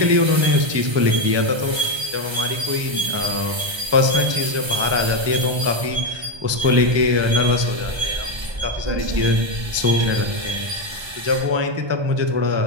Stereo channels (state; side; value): late; left; 1.2 ms